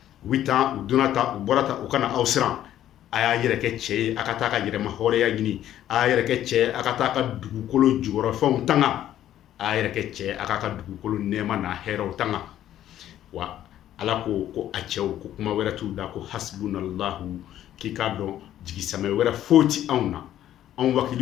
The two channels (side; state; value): right; quieter; 11.9 dB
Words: u bɛ taa u donna ta u bɔra ta u kana aw siran, a y'a yɛrɛ kɛ cɛ ye, a ka taa ka yɛrɛma hɔrɔnya ɲini, a y'a yɛrɛ kɛ cɛ ye, a ka taa ka dugukolo jukɔrɔfɛnw tanga, a y'a yɛrɛ kɛ cɛ ye, a ka dugukolo nɛɛma n'a hɛrɛw tanga. Wa Ala ko a cɛw ko kuma wɛrɛ t'u da ko hasbunallahu, k'i k'a dɔn jigisamɛ wɛrɛ foyi ti anw na, anw